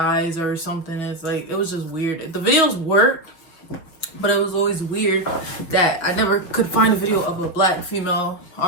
or something. It's like, it was just weird. The videos worked, but it was always weird that I never could find a video of a black female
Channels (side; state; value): right; late; 6.0 ms